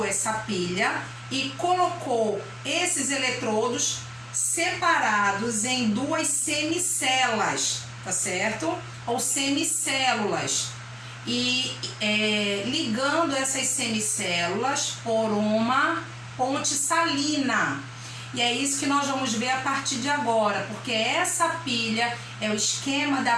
essa pilha e colocou esses eletrodos separados em duas semicelas, tá certo? Ou semicélulas. E ligando essas semicélulas por uma ponte salina. E é isso que nós vamos ver a partir de agora, porque essa pilha é o esquema da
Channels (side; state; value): both; identical; correlation 1.00